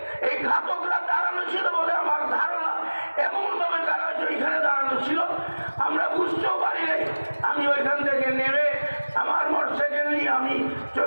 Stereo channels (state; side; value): inverted; both; correlation -1.00